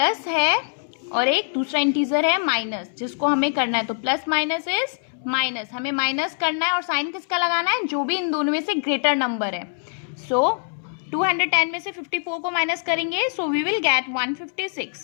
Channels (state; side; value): silent; right; 63 dB below the other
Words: है और एक दूसरा इंटीजर है माइनस, जिसको हमें करना है. तो प्लस माइनस इज माइनस, हमें माइनस करना है और साइन किसका लगाना है, जो भी इन दोनों में से ग्रेटर नंबर है. सो 210 में से 54 को माइनस करेंगे, so we will get